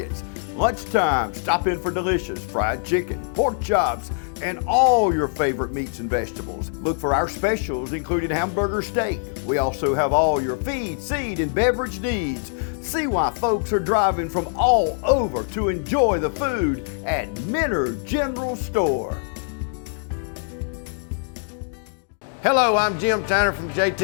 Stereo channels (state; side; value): silent; right; digital silence